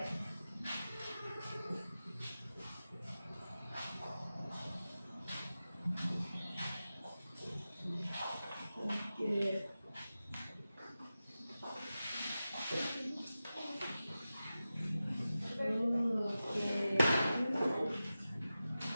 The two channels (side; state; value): both; inverted; correlation -0.94